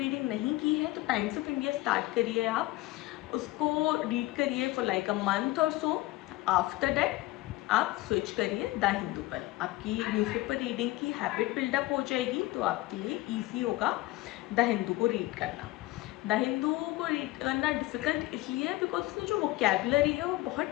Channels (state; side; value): quieter; right; 18.5 dB